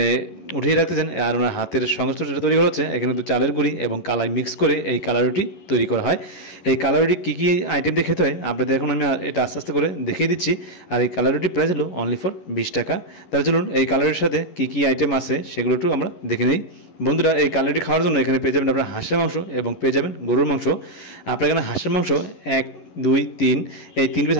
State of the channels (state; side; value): late; right; 11 ms